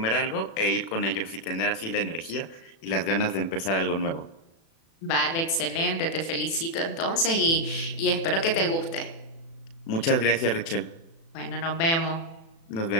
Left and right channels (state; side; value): late; right; 36 ms